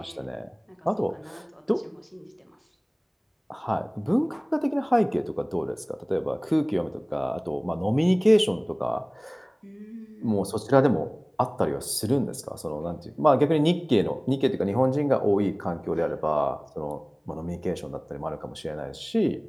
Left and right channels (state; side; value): identical; both; correlation 1.00